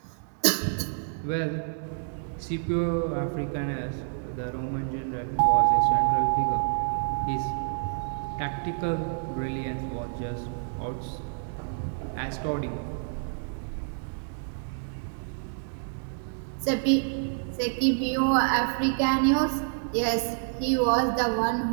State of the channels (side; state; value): left; silent; 59 dB below the other